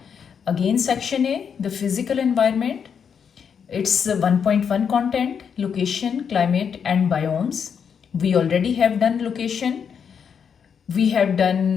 Again, section A, the physical environment. It's 1.1 content, location, climate and biomes. We already have done location. We have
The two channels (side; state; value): right; quieter; 7.1 dB